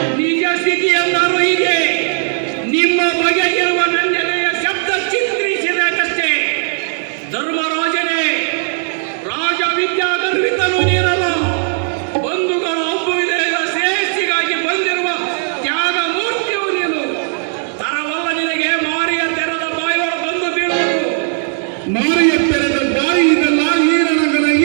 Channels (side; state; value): left; silent; 63 dB below the other